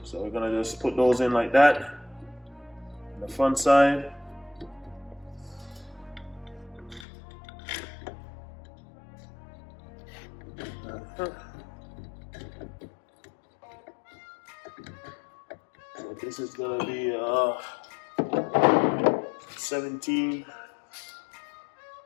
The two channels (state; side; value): drops out; right; at 7.1 s